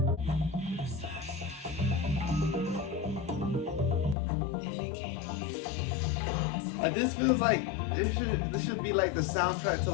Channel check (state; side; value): drops out; right; at 4.2 s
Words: Like, this feels like this should be like the soundtrack to